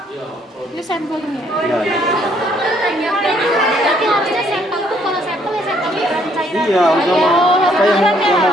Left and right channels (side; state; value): both; normal; correlation 0.66